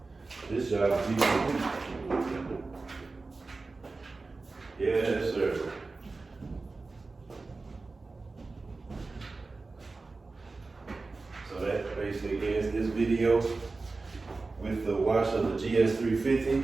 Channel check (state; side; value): quieter; left; 3.7 dB